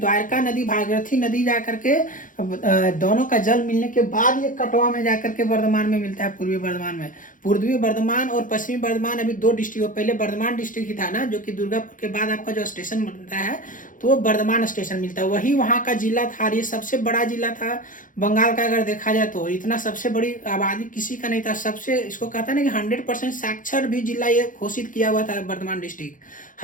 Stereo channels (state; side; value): late; right; 0.38 ms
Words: नदी भागीरथी नदी जाकर के दोनों का जल मिलने के बाद ये कटवा में जाकर के बर्धमान में मिलता है, पूर्वी बर्धमान में। पूर्वी बर्धमान और पश्चिमी बर्धमान अभी दो डिस्ट्रिक्ट, पहले बर्धमान डिस्ट्रिक्ट ही था ना, जो कि दुर्गापुर के बाद आपका जो स्टेशन बनता है तो वो बर्धमान स्टेशन मिलता है, वही वहाँ का जिला था। ये सबसे बड़ा जिला था बंगाल का, अगर देखा जाए तो इतना सबसे बड़ी आबादी किसी का नहीं था। सबसे इसको कहता है ना कि 100% साक्षर भी जिला ये घोषित किया हुआ था बर्धमान डिस्ट्रिक्ट।